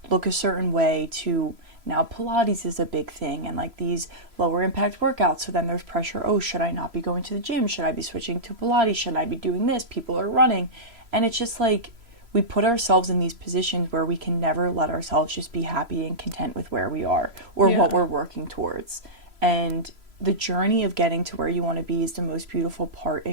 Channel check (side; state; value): left; late; 3.0 ms